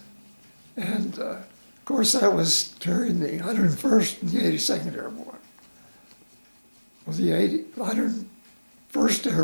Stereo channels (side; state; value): both; inverted; correlation -1.00